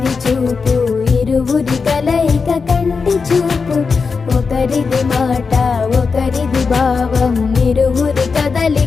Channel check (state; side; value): quieter; right; 5.0 dB